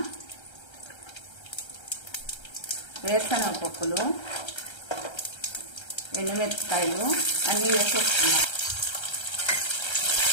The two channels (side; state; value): right; late; 1.3 ms